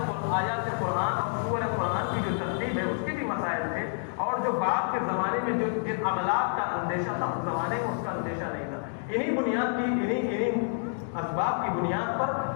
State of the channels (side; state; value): right; silent; digital silence